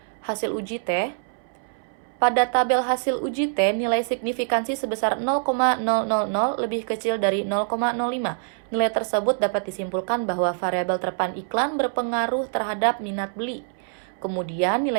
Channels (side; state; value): left; silent; 62 dB below the other